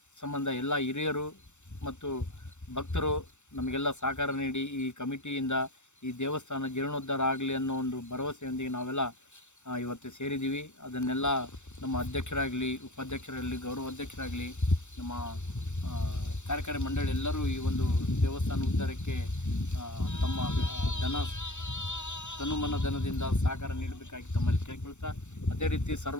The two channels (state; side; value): late; right; 0.84 ms